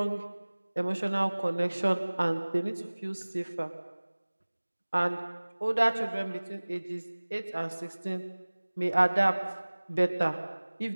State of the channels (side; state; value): both; inverted; correlation -1.00